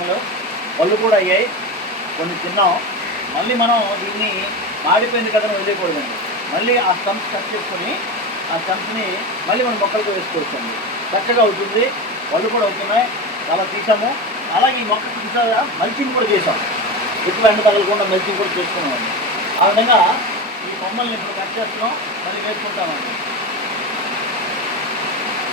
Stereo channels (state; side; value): normal; both; correlation 0.22